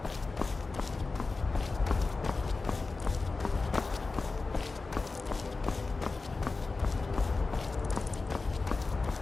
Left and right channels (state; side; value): quieter; right; 3.8 dB